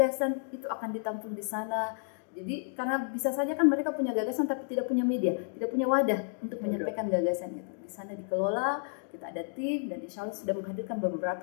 itu akan ditampung di sana. Jadi karena bisa saja kan mereka punya gagasan tapi tidak punya media, tidak punya wadah untuk menyampaikan gagasan itu. Di sana dikelola, kita ada tim, dan insya Allah sudah menghadirkan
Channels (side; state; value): right; silent; digital silence